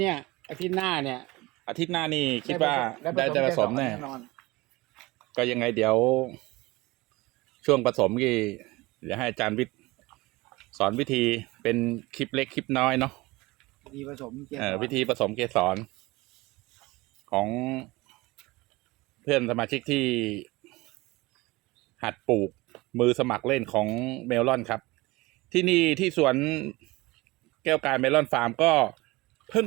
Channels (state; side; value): quieter; left; 21.7 dB